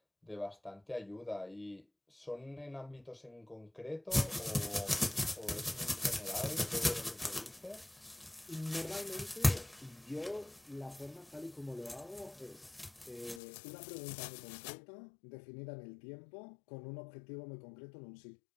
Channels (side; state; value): right; drops out; at 13.4 s